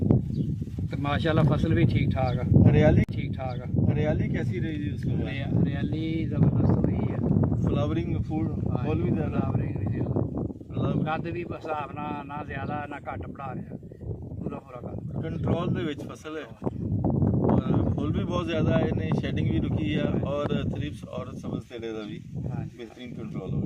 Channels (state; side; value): identical; both; correlation 1.00